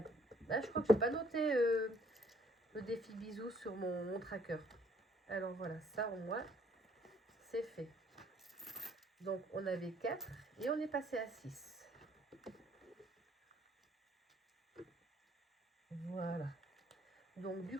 Là, je crois que je n'ai pas noté le défi bisous sur mon tracker. Alors, voilà, ça au moins, c'est fait. Donc, on avait 4 et on est passé à 6. Voilà. Donc, du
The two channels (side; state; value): both; normal; correlation 0.63